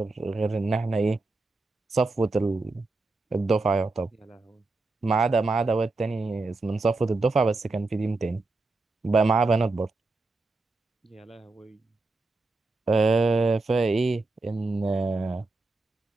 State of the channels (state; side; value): quieter; left; 3.4 dB